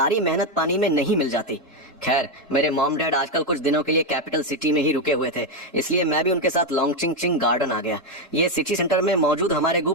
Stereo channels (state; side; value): normal; both; correlation 0.06